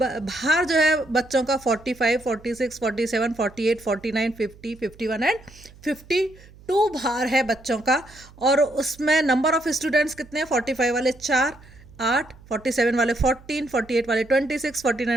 जो है बच्चों का 45, 46, 47, 48, 49, 50, 51 एंड 52 भार है बच्चों का। और उसमें नंबर ऑफ स्टूडेंट्स कितने हैं? 45 वाले 4, 8, 47 वाले 14, 48 वाले 26,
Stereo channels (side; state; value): right; noise; hum, 23 dB below the sound